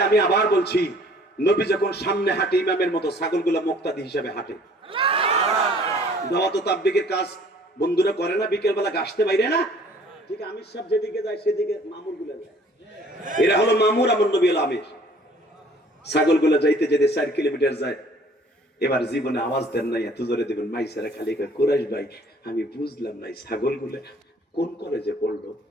আমি আবার বলছি, নবী যখন সামনে হাঁটে ইমামের মতো, ছাগলগুলা মুক্তাদি হিসাবে হাঁটে। দাওয়াত ও তাবলীগের কাজ বন্ধুরা করে না, বিকেল বেলা গাছতে বাইরে না, ঠিক আমির সাহেব যেদিকে যায় সেদিকে মামুর গুলা যায়। এরা হলো মামুর, আমার নবী হলো আমির। ছাগলগুলা যাইতে যেতে 4 কিলোমিটার যায়। এবার জীবনে আওয়াজ দেন নাই, এত জোরে দেবেন মাইসারা খালি কুরাইশ ভাই আমি বুঝলাম নাই ছাগলগুলা কোন কলেজে পড়লো,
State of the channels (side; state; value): both; normal; correlation 0.54